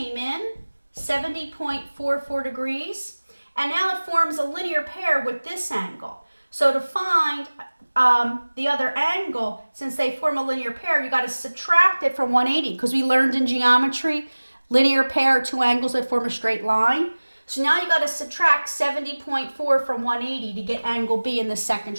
in 70.44 degrees, and now it forms a linear pair with this angle. So to find the other angle, since they form a linear pair, you got to subtract it from 180 because we learned in geometry, linear pair, 2 angles that form a straight line. So now you got to subtract 70.4 from 180 to get angle B in the second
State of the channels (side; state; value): both; inverted; correlation -1.00